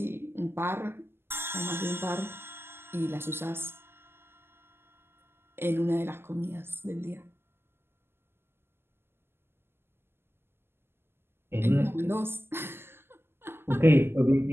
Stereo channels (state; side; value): late; left; 0.11 ms